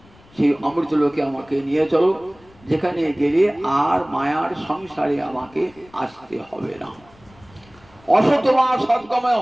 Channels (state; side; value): noise; left; rumble, 27 dB below the sound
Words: সেই অমৃত লোকে আমাকে নিয়ে চলো, যেখানে গেলে আর মায়ার সংসারে আমাকে আসতে হবে না। অসৎ মা সৎগময়।